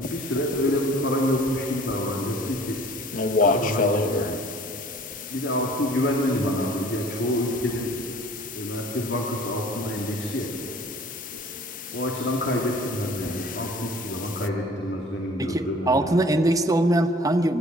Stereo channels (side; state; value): both; normal; correlation 0.50